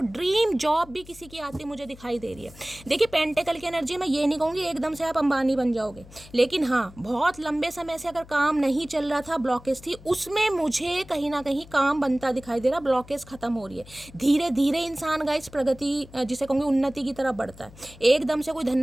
ड्रीम जॉब भी किसी की आती मुझे दिखाई दे रही है। देखिए पेंटिकल की एनर्जी, मैं ये नहीं कहूँगी एकदम से आप अंबानी बन जाओगे, लेकिन हाँ बहुत लंबे समय से अगर काम नहीं चल रहा था, ब्लॉकेज थी, उसमें मुझे कहीं ना कहीं काम बनता दिखाई दे रहा, ब्लॉकेज खत्म हो रही है। धीरे धीरे इंसान गाइस प्रगति, जिसे कहूँगी उन्नति की तरफ बढ़ता है। एकदम से कोई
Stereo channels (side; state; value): left; noise; hum, 20 dB below the sound